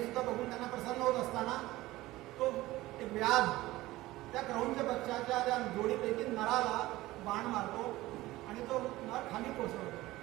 सुद्धा बघून त्यांना प्रसन्न होत असताना तो एक व्याध त्या क्रौंच पक्षाच्या त्या जोडीपैकी नराला बाण मारतो आणि तो नर खाली कोसळतो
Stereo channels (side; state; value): left; quieter; 17.8 dB